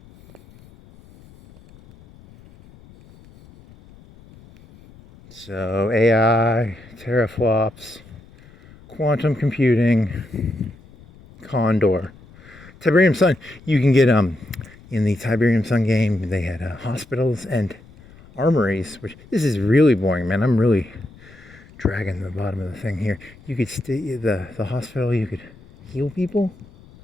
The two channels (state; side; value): noise; left; rumble, 23 dB below the sound